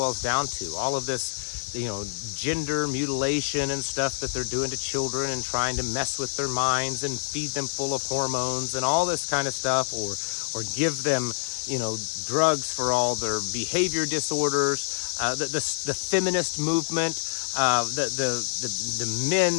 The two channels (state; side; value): silent; right; digital silence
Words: down to. All of this, gender mutilation and stuff that they're doing to children and trying to mess with their minds and feed them full of hormones and all this kind of stuff, or give them, drugs for all their behavior disorders, the feminist movement, the